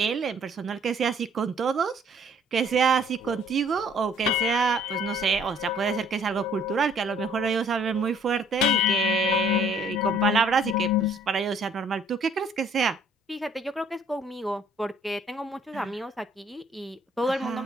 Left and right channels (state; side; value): normal; both; correlation 0.59